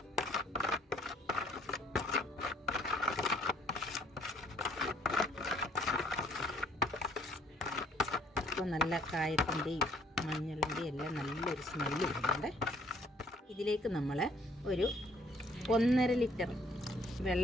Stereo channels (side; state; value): both; normal; correlation 0.61